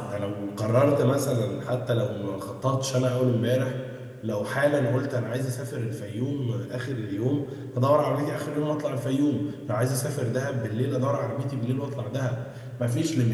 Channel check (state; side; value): identical; both; correlation 1.00